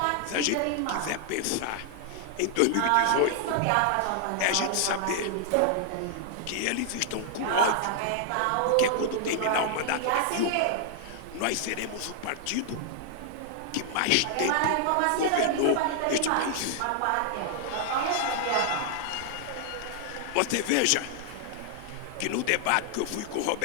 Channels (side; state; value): both; different; correlation 0.00